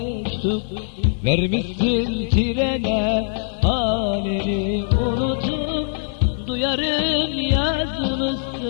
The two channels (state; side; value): silent; right; digital silence